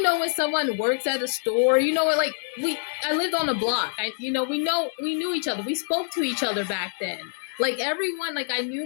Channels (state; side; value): silent; right; digital silence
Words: someone works at a store, I lived on a block. We knew each other. We spoke to each other back then. Like everyone, like I